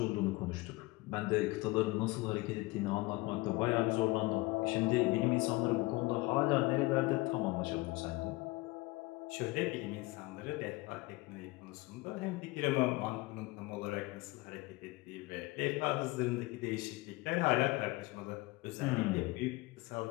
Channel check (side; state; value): right; quieter; 22.1 dB